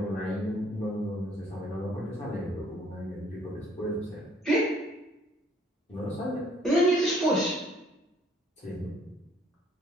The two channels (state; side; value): normal; both; correlation 0.62